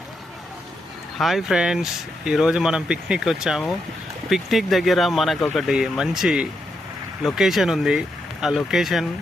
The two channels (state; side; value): normal; both; correlation 0.82